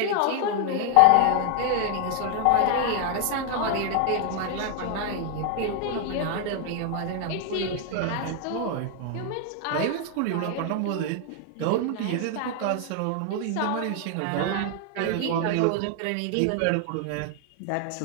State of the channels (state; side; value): different; both; correlation 0.00